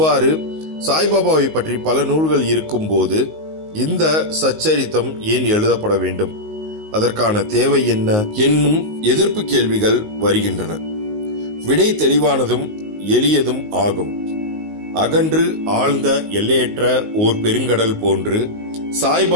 சாய்பாபாவை பற்றி பல நூல்கள் இருக்கும் போது இந்த சச்சரித்தம் ஏன் எழுதப்பட வேண்டும்? அதற்கான தேவை என்ன என்னும் எதிர்ப்பு கேள்விகள் வருகின்றன. விடை தெளிவானதும் எளியதும் ஆகும். அகன்று ஆழ்ந்த எல்லையற்ற ஓர் பெருங்கடல் போன்று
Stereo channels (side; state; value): left; late; 19 ms